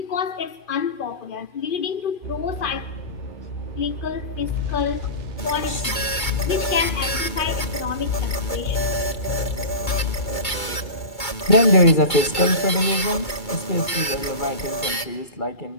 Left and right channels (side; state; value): right; late; 2.2 ms